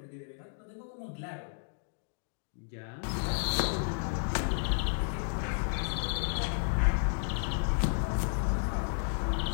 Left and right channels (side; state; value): right; silent; digital silence